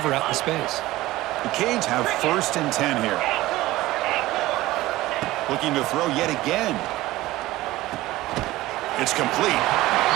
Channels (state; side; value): quieter; left; 17.5 dB